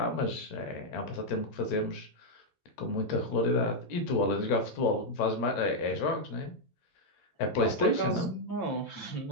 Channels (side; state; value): right; late; 9.0 ms